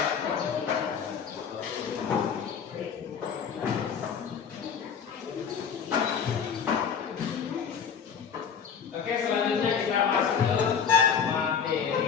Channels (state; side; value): quieter; right; 7.0 dB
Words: Oke, selanjutnya kita masuk ke